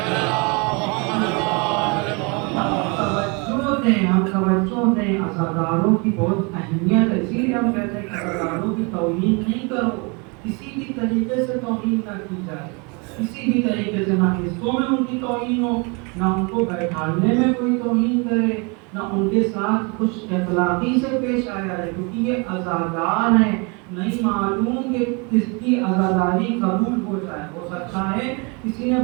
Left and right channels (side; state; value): left; quieter; 31.4 dB